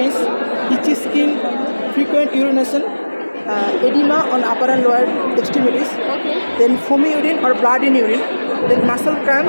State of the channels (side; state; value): both; inverted; correlation -1.00